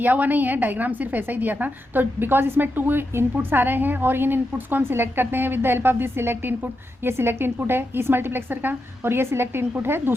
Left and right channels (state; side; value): normal; both; correlation 0.86